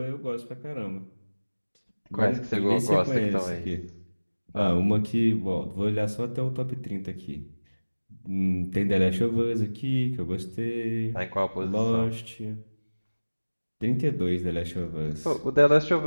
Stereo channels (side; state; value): both; inverted; correlation -1.00